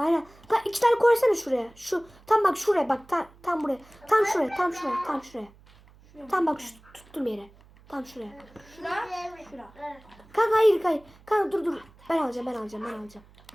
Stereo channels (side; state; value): right; noise; hum, 26 dB below the sound